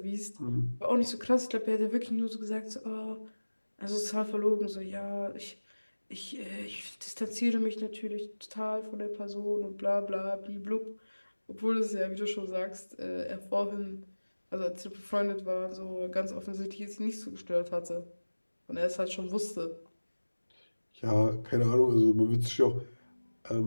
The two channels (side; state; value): both; inverted; correlation -1.00